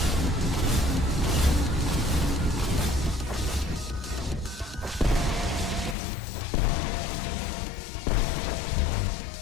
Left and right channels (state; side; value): drops out; right; at 6.0 s